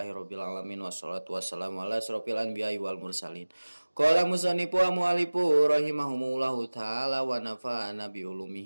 alamin wassalatu wassalamu ala asrofil anbiya'i wal mursalin. Qala musannifu wa mu'allifu rahimahumullahu taala wa nafa'ana bi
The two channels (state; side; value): inverted; both; correlation -1.00